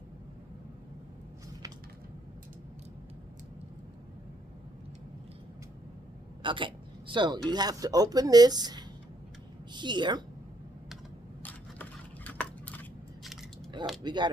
okay, so you have to open this here. We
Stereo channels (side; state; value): both; normal; correlation 0.71